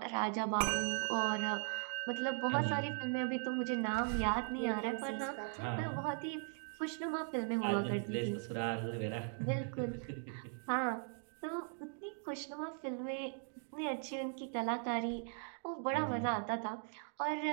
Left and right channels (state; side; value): silent; left; 52 dB below the other